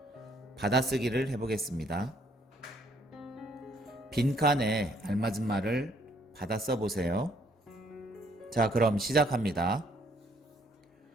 받아쓰기를 해보겠습니다. 빈칸에 알맞은 말을 받아 써보세요. 자, 그럼 시작합니다.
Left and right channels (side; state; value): both; normal; correlation 0.66